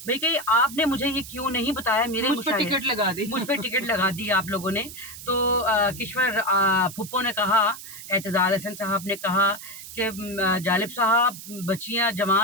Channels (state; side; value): noise; right; hiss, 13 dB below the sound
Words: भाई कही आपने मुझे ये क्यों नहीं बताया, मेरे मुझ पे मुशायरे टिकट लगा दी। मुझ पे टिकट लगा दी आप लोगों ने। तो किश्वर फुप्पो ने कहा, एतजाल हसन साहब ने कहा कि जालिब साहब बच्चियां